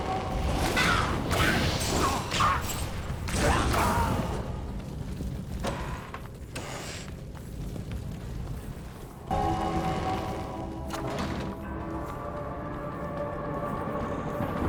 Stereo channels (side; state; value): both; identical; correlation 1.00